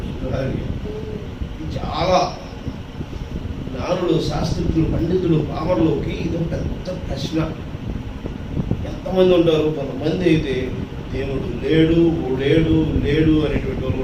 చాలా జ్ఞానులు, శాస్త్రజ్ఞులు, పండితులు, పామరులకి ఇది పెద్ద ప్రశ్న. ఎంతమంది ఉంటారు? కొంతమంది అయితే దేవుడు లేడు లేడు లేడు అనేటువంటి వాళ్ళు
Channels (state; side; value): identical; both; correlation 1.00